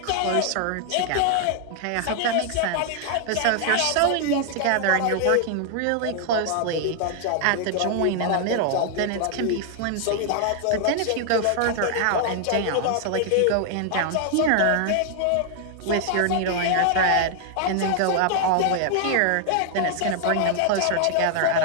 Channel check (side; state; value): both; different; correlation 0.00